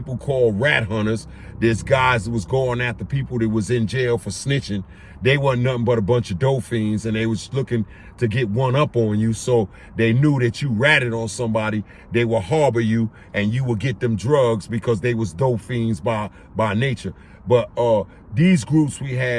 called rat hunters. There's guys that was going after people that was in jail for snitching. They wasn't nothing but a bunch of dope fiends, and they was looking to get one up on you, so they knew that you ratted on somebody, they would harbor you, and you would get them drugs because they was dope fiends by nature. But these groups we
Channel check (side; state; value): both; identical; correlation 1.00